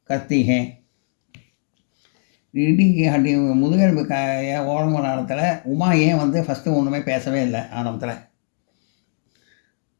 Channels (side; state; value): right; silent; digital silence